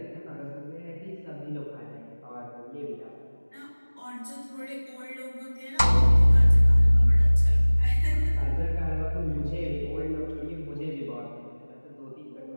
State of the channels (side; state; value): both; inverted; correlation -1.00